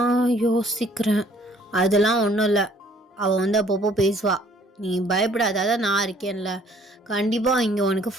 யோசிக்கிறேன். அதெல்லாம் ஒன்றும் இல்லை, அவள் வந்து அப்பப்போ பேசுவா. நீ பயப்படாத, அதான் நான் இருக்கேன்ல. கண்டிப்பாக இங்கே உனக்கு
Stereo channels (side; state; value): both; normal; correlation 0.59